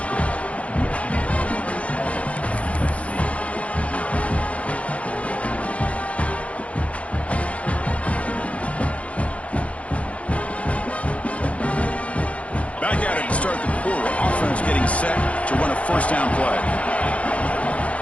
Back at it to start the quarter. Offense getting set to run a first down play.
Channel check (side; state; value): right; late; 0.064 ms